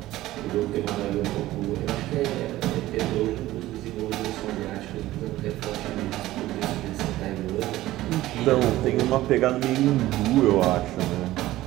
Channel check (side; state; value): left; quieter; 16.0 dB